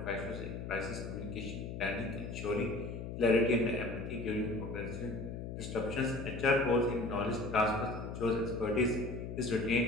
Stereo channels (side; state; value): left; noise; hum, 7 dB below the sound